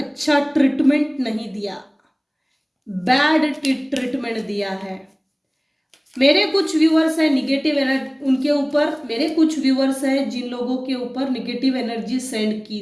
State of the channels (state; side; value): identical; both; correlation 1.00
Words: ट्रीटमेंट नहीं दिया, बैड ट्रीटमेंट दिया है। मेरे कुछ व्यूअर्स है निगेटिव एनर्जी उनके ऊपर, मेरे कुछ व्यूअर्स है जिन लोगों के ऊपर निगेटिव एनर्जी सेंड की